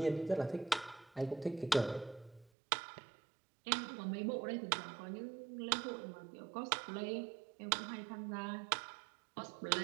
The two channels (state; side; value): drops out; left; at 2.5 s